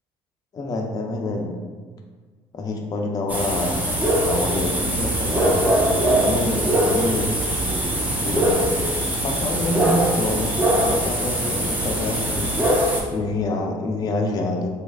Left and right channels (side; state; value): both; normal; correlation 0.49